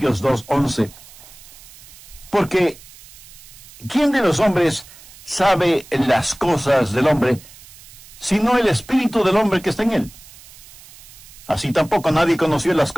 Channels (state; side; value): noise; right; hiss, 20 dB below the sound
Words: 2:11. Porque, ¿quién de los hombres sabe las cosas del hombre, sino el espíritu del hombre que está en él? Así tampoco nadie conoció las